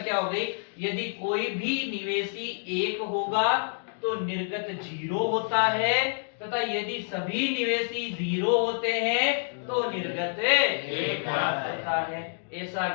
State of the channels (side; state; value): right; silent; digital silence